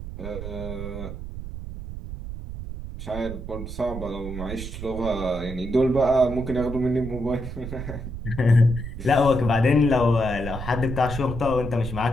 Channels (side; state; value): right; noise; rumble, 8 dB below the sound